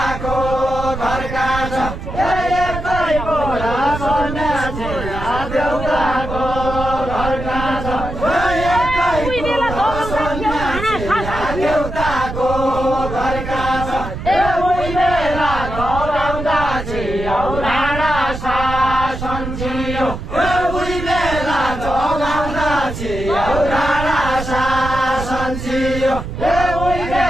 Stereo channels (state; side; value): noise; right; rumble, 7 dB below the sound